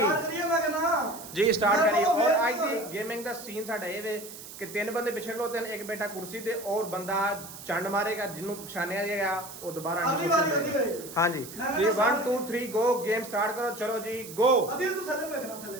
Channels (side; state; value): right; noise; hiss, 14 dB below the sound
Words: करिए मैं कहना ਜੀ ਸਟਾਰਟ ਕਰੀਏ ਔਰ ਅੱਜ ਦੀ ਗੇਮਿੰਗ ਦਾ ਸੀਨ ਸਾਡਾ ਇਹ ਵੇ कि तीन बंदे पिछले खलोते हैं एक बेटा कुर्सी दे और बंदा चंड मारेगा जिन्हों पछानिया जाएगा वो दोबारा अगली बारी होती है हाँ जी जी 1 2 3 गो गेम स्टार्ट करो चलो जी गो अदिल तू थले में रखना थले